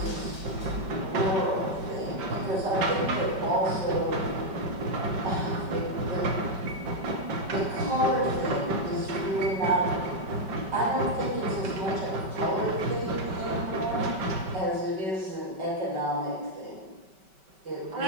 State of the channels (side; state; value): left; late; 5.2 ms